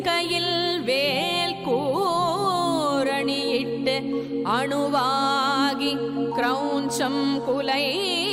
வேல் கூரணியிட்டு அணுவாகி கிரௌஞ்சம் குலைந்தரக்கர்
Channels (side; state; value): both; identical; correlation 1.00